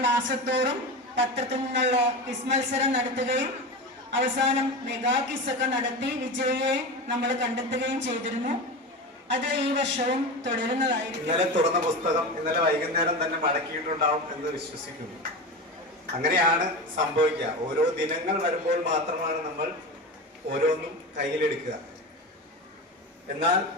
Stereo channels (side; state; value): both; normal; correlation 0.25